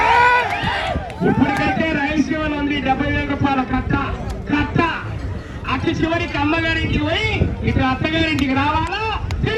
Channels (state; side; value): identical; both; correlation 1.00